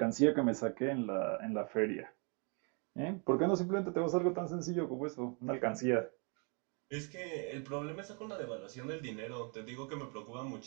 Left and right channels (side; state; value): left; quieter; 36.3 dB